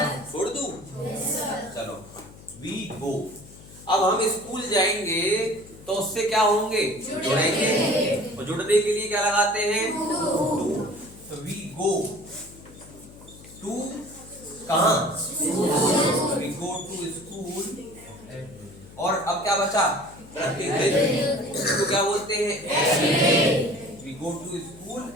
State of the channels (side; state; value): left; noise; hum, 20 dB below the sound